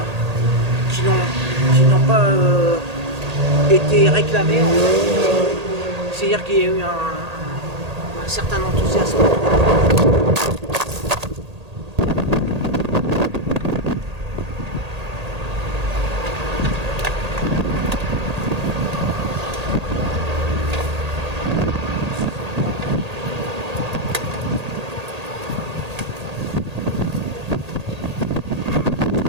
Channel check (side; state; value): left; late; 1.8 ms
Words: été réclamés. C'est-à-dire qu'il y a eu un certain enthousiasme.